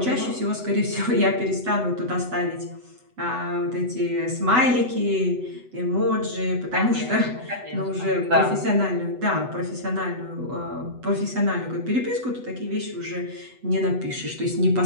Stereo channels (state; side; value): late; left; 8.0 ms